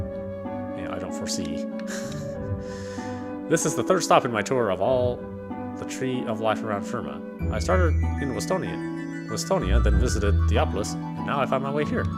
don't foresee. This is the third stop in my tour of all the tree of life around Firma. I started in Westonia, then visited Theopolis, and now I found my way here.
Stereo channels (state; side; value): identical; both; correlation 1.00